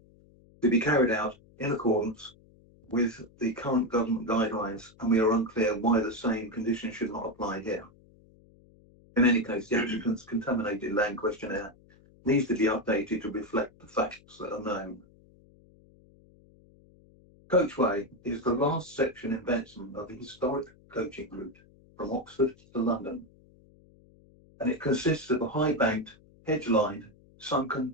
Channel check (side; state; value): left; noise; hum, 27 dB below the sound